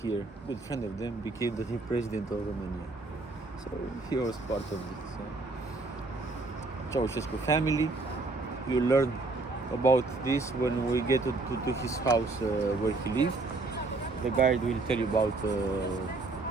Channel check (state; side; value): quieter; left; 3.4 dB